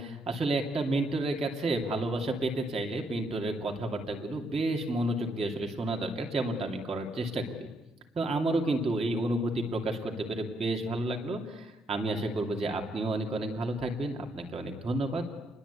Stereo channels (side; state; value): both; normal; correlation 0.74